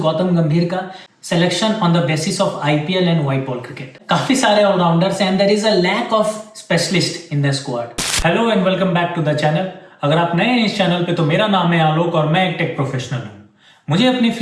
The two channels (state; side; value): identical; both; correlation 1.00